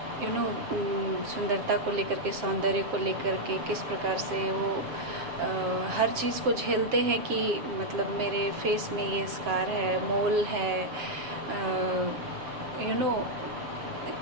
सुंदरता को लेकर के, सौंदर्य को लेकर के, किस प्रकार से वो हर चीज़ को झेलते हैं कि मतलब मेरे फेस में ये स्कार है, मोल है,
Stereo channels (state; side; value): late; left; 7.2 ms